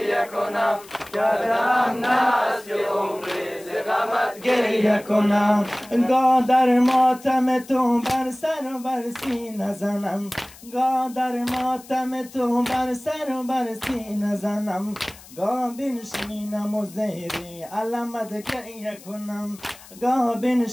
کنم، دردم است که عمری ز غمت گریه کنم. گاه در ماتم تو بر سر و بر سینه زنم، گاه در ماتم تو بر سر و بر سینه زنم، گاه بنشینم و زیر علمت گریه کنم، گاه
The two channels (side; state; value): left; noise; hiss, 21 dB below the sound